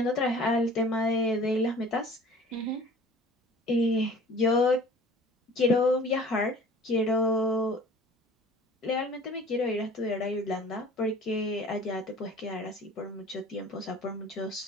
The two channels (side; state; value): both; normal; correlation 0.47